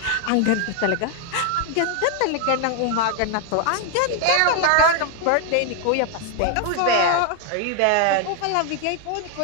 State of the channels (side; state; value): both; different; correlation 0.00